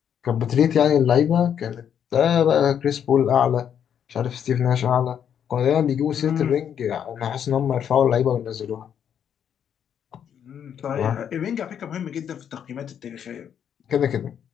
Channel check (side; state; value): right; quieter; 8.7 dB